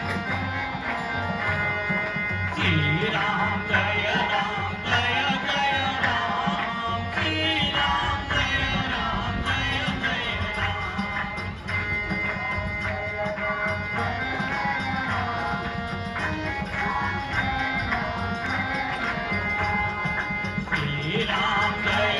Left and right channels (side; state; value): both; identical; correlation 1.00